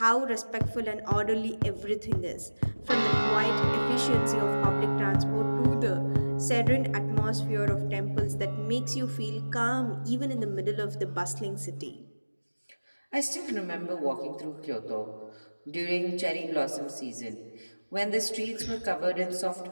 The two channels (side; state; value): both; inverted; correlation -1.00